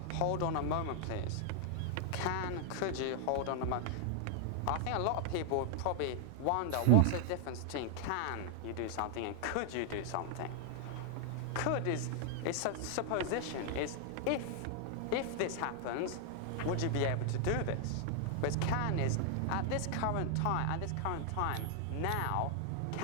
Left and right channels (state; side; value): different; both; correlation 0.00